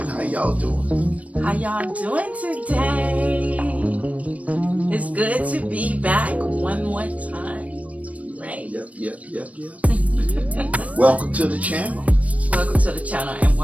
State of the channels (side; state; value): left; late; 0.067 ms